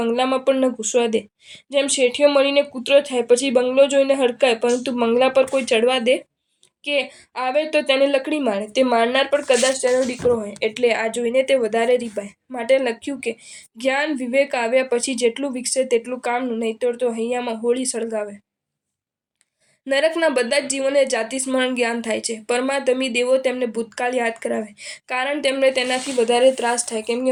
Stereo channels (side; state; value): both; identical; correlation 1.00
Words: પણ ન ઘૂસવા દે. જેમ શેઠિયો મળીને કૂતરો થાય પછી બંગલો જોઈને હડકાય, પરંતુ બંગલા પર કોઈ ચડવા દે કે આવે તો તેને લકડી મારે. તે મારનાર પણ કદાચ તેનો દીકરો હોય, એટલે આ જોઈને તે વધારે રીપાય. માટે લખ્યું કે જ્ઞાન વિવેક આવ્યા પછી જેટલું વિકસે તેટલું કામનું, નહીંતર તો હૈયામાં હોળી સળગાવે. નરકના બધા જ જીવોને જાતિ સ્મરણ જ્ઞાન થાય છે. પરમાધમી દેવો તેમને ભૂતકાળ યાદ કરાવે, કારણ તેમને તેનાથી વધારે ત્રાસ થાય. કેમ